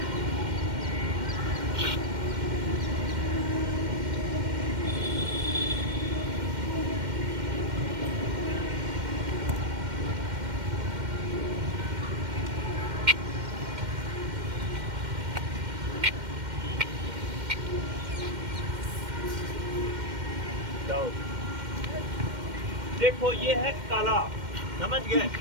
देखो ये है कला, समझ गए।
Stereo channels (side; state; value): left; late; 2.1 ms